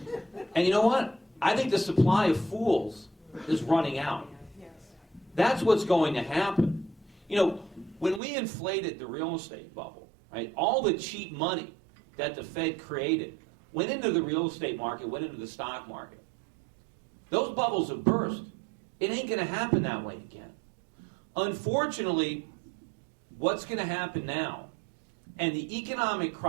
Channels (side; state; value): left; drops out; at 8.2 s